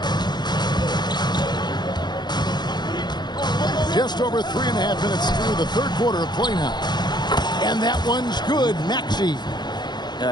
Just over 3.5 minutes through the third quarter of play now. And that one's good. Maxey.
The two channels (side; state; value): right; late; 0.21 ms